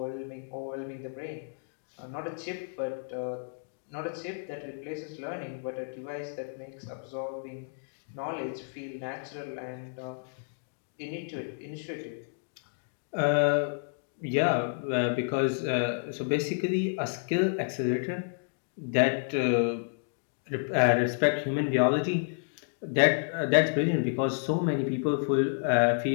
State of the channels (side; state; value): right; silent; digital silence